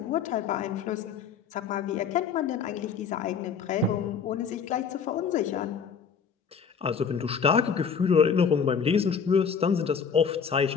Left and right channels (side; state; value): right; quieter; 6.4 dB